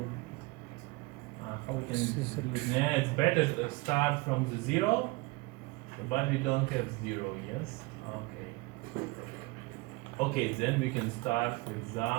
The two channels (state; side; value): quieter; left; 23.4 dB